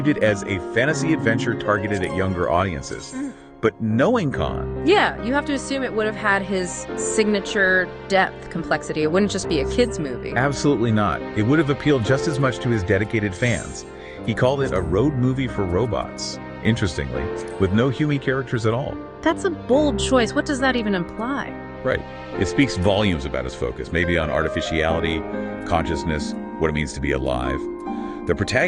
it as a fantasy adventure targeted at younger audiences. But knowing Khan... Yeah, you have to assume it would have had his signature depth complexity. It wouldn't just be a kid's movie. Absolutely not. It would have appealed just as much to his dedicated fans. He called it a road movie for robots, interestingly, with no human characters at all. That's a bold choice. What does that even imply? Right. It speaks volumes about his focus, maybe on artificiality, consciousness, what it means to be alive. The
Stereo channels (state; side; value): identical; both; correlation 1.00